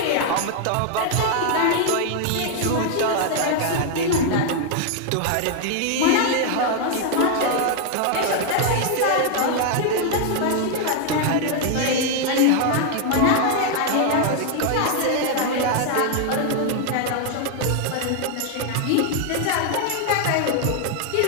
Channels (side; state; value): both; different; correlation 0.00